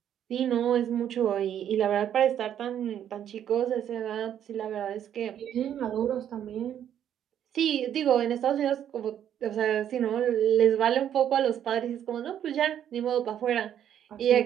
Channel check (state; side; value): quieter; left; 10.0 dB